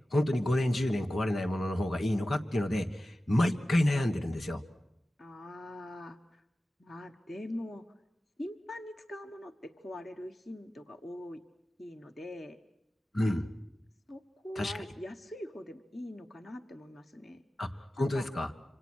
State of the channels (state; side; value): normal; both; correlation 0.95